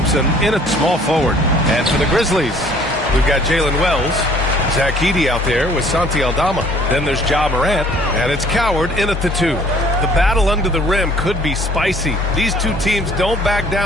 in at small forward. And for the Grizzlies, we've got Jalen Wells. Zach Edey out there with Santi Aldama. Then there's Ja Morant. And it's Coward in at the 2. The battle under the rim could be spicy. These 2 teams don't back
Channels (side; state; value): both; normal; correlation 0.56